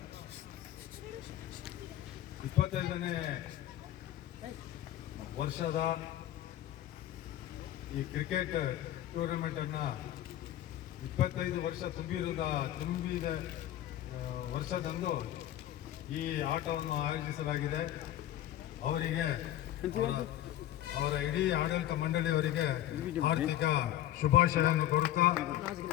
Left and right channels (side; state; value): right; quieter; 12.8 dB